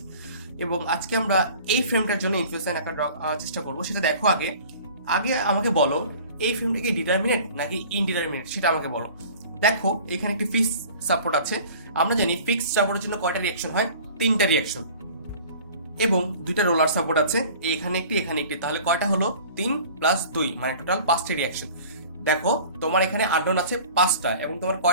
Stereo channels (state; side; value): inverted; both; correlation -0.45